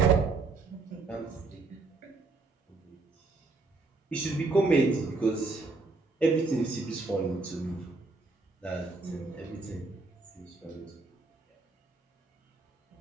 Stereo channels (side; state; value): left; quieter; 3.7 dB